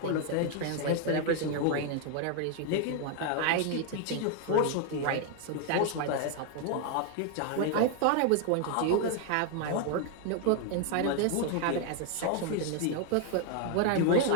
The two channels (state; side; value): different; both; correlation 0.00